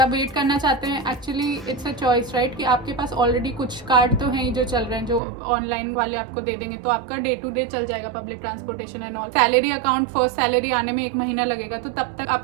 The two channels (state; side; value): drops out; left; at 5.2 s